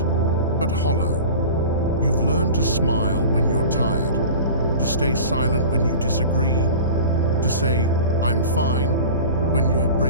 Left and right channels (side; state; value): both; inverted; correlation -0.37